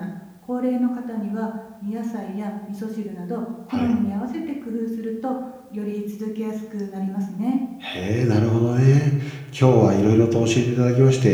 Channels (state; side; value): identical; both; correlation 1.00